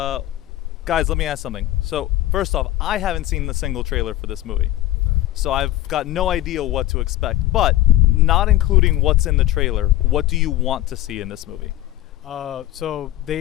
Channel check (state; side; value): quieter; right; 14.6 dB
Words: let me ask something. So first off, I haven't seen the single trailer for this movie, so I've got no idea what to expect. But not including what's in the trailer, what do you want to see in this movie? So